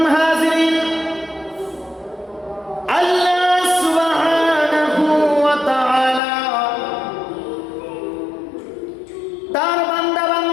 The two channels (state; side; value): drops out; right; at 6.2 s